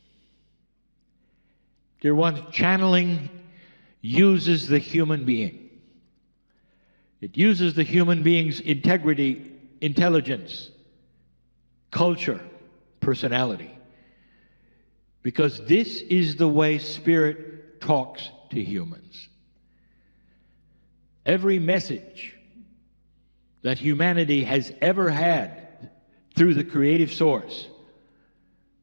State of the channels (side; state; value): both; inverted; correlation -1.00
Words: Dear ones, channeling uses the human being. It uses the human being's integrity, intelligence, culture, personality. Because this is the way Spirit talks to humans. Every message that humanity has ever had through the creative source